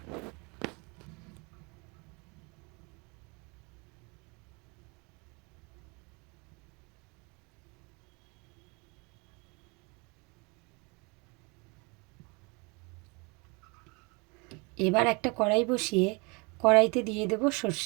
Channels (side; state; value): left; quieter; 29.7 dB